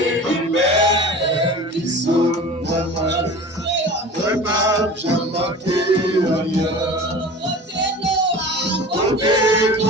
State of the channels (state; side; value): normal; both; correlation 0.38